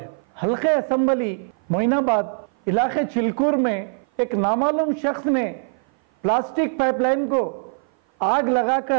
हल्के असम्बली मोइनाबाद इलाके चिलकूर में एक नामालूम शख्स ने प्लास्टिक पाइपलाइन को आग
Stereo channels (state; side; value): silent; left; 56 dB below the other